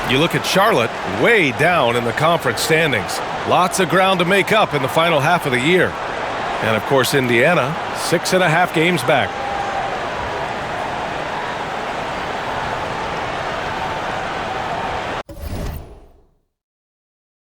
You look at Charlotte, way down in the conference standings. Lots of ground to make up in the final half of the year. And of course, Indiana, 6.5 games back.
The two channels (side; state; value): both; identical; correlation 1.00